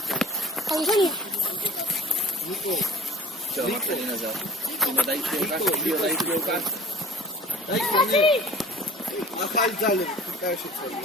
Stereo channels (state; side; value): normal; both; correlation 0.45